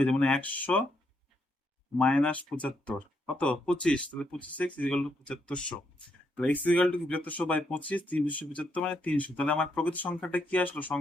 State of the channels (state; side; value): normal; both; correlation 0.77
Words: যায়, মানে 100 মাইনাস 75 কত 25, তাহলে 25x ইকুয়াল টু 7500। তাহলে x ইকুয়াল টু 7500 বাই 25, 375 মানে 300। তাহলে আমার প্রকৃত সংখ্যাটা কি আসলো?